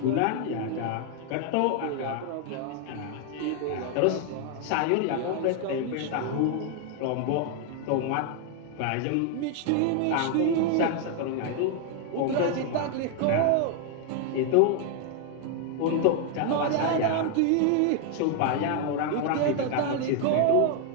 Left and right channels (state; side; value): different; both; correlation 0.00